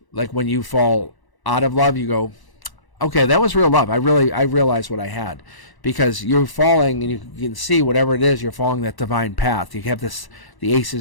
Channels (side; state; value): right; late; 1.0 ms